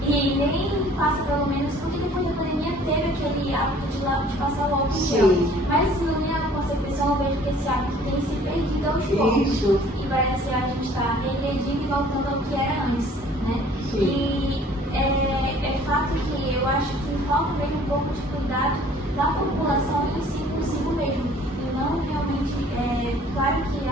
E nem passa pelo menos, porque depois da pandemia teve aquele hábito de passar o álcool em gel. Mas na minha concepção eu vejo que esse hábito tem se perdido aos poucos. Isso. E parece que a gente está regredindo e voltando ao que era antes, né? Sim. E é fato que eu acho que falta mesmo um pouco de cuidado da população em si consigo mesmo. E não realmente, claro que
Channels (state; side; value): normal; both; correlation 0.53